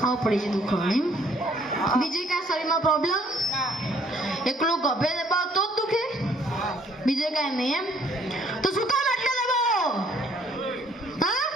પડી છે દુખવાની. બીજી કાંઈ શરીરમાં પ્રોબ્લેમ? એકલું ગભે દબાવ તો જ દુખે? બીજે કાંઈ નહીં એમ? તો શું કામ આટલે દબાવો? હા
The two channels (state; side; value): normal; both; correlation 0.62